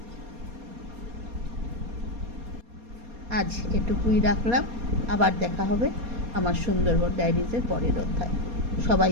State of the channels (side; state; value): left; late; 4.2 ms